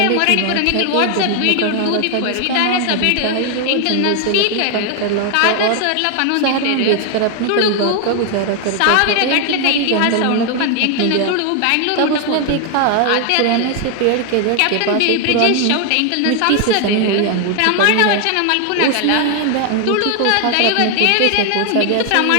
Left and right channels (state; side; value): different; both; correlation 0.01